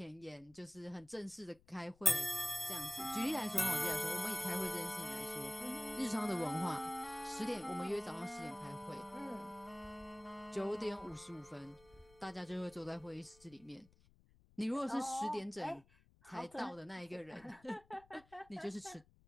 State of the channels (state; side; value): noise; left; rumble, 27 dB below the sound